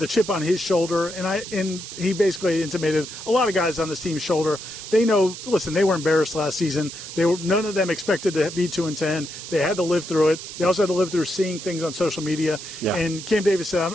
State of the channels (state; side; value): noise; right; hiss, 11 dB below the sound